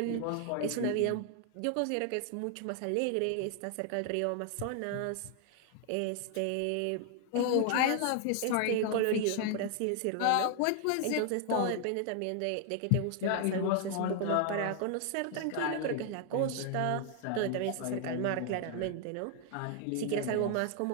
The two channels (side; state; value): both; different; correlation 0.00